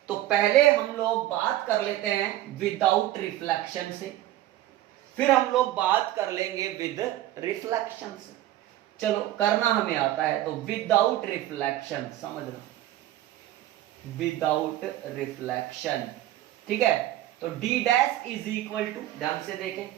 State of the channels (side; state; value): left; quieter; 14.2 dB